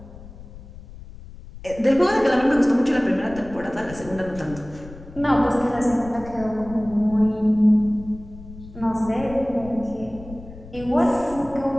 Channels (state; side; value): noise; left; rumble, 16 dB below the sound